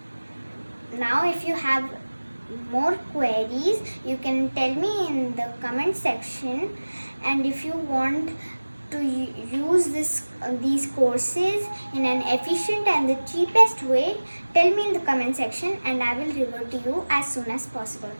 Now if you have more queries, you can tell me in the comment section, and if you want to use these courses in an efficient and the cheapest way, tell me in the comment section and I will revert to you as soon as possible.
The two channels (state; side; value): inverted; both; correlation -1.00